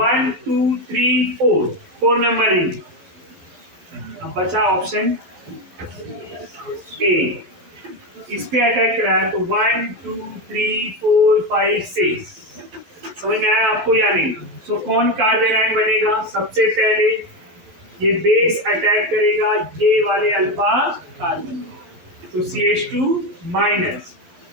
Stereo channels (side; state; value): left; late; 11 ms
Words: 2 3 4 मेंबर रिंग, अब बचा ऑप्शन ए, इस पे अटैक करा है तो 1 2 3 4 5 6। समझ में आया आपको या नहीं? सो कौन कार्बन आयन बनेगा, सबसे पहले ये बेस अटैक करेगा ये वाले अल्फा कार्बन, तो CH2 minus,